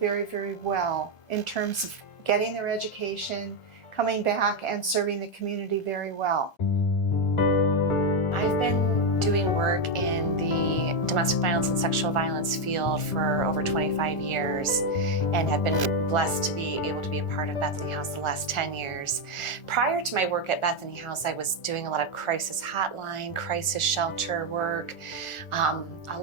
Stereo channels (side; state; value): right; late; 1.4 ms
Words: very well in terms of getting their education, coming back and serving the community very well. I've been doing work in the domestic violence and sexual violence field for over 25 years and have been blessed to be able to be a part of Bethany House the last 10 years. Prior to my work at Bethany House, I was doing a lot of crisis hotline, crisis shelter work, a